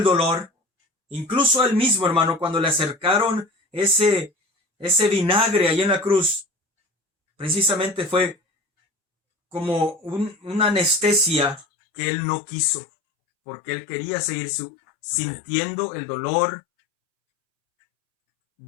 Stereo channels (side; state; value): right; drops out; at 11.7 s